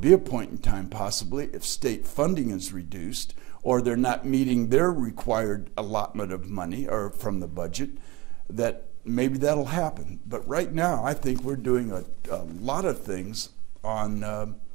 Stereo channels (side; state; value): left; quieter; 22.4 dB